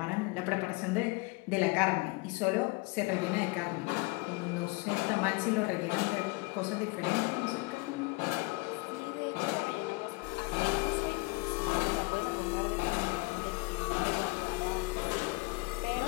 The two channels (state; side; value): quieter; right; 26.6 dB